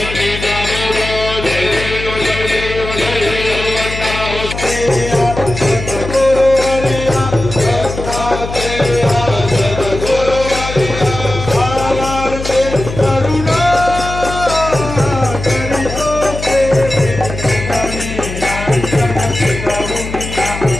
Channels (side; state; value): left; noise; hum, 8 dB below the sound